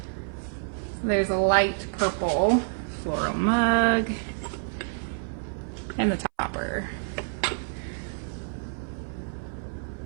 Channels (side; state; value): left; silent; 59 dB below the other